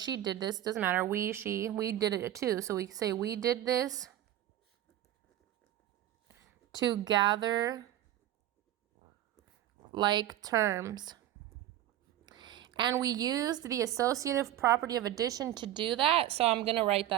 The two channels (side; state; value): left; quieter; 12.8 dB